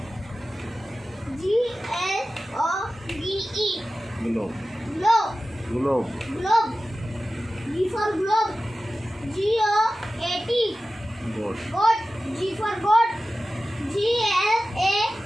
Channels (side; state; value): both; normal; correlation 0.95